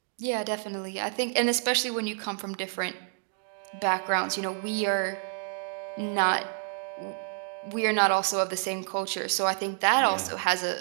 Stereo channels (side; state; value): left; silent; digital silence